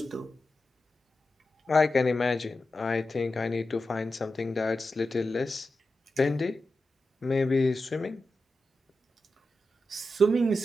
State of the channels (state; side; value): normal; both; correlation 0.91